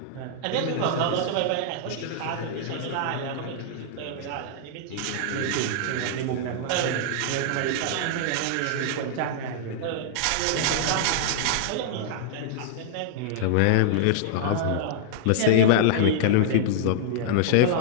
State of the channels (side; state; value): both; different; correlation -0.01